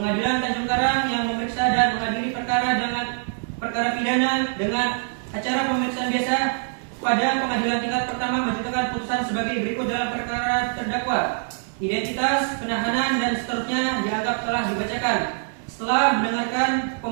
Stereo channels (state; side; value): silent; left; 60 dB below the other